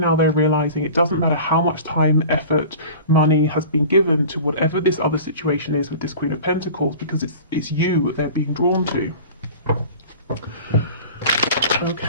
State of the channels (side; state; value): both; inverted; correlation -0.40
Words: they're realizing it doesn't matter how much time, effort, money has been given to whatever this other situation is with this Queen of Pentacles, because it's you they're being drawn to.